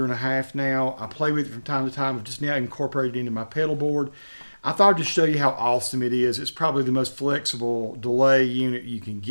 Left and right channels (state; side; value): inverted; both; correlation -1.00